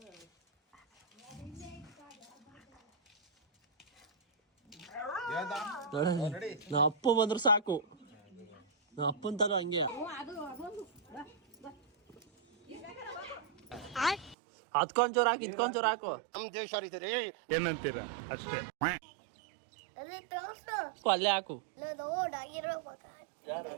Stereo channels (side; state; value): left; drops out; at 14.4 s